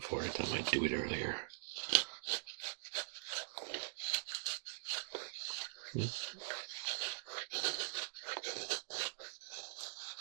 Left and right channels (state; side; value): silent; left; digital silence